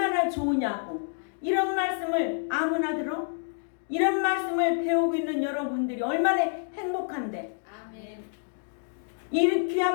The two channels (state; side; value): silent; right; digital silence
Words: 좋으냐고. 이런 말씀을 아무나 들어? 이런 말씀을 배우고 있는 여러분들이 얼마나 행복한데. 아멘. 이